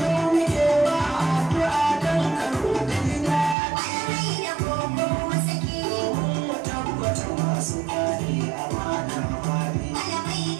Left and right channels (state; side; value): drops out; left; at 3.6 s